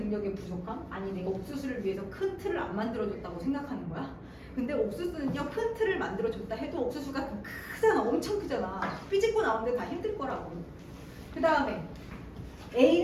부족함? 아니 내가 옥수수를 위해서 큰 틀을 안 만들어줬다고 생각하는 거야? 근데 옥수수는요 큰 틀을 만들어줬다 해도 옥수수가 크잖아. 엄청 크잖아. 삐집고 나오는데 다 힘들 거라고. 그 다음에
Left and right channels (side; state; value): both; identical; correlation 1.00